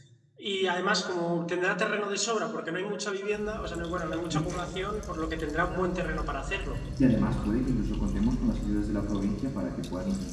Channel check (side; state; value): both; identical; correlation 1.00